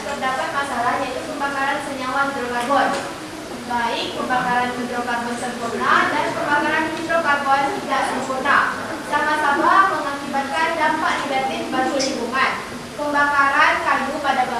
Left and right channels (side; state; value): both; identical; correlation 1.00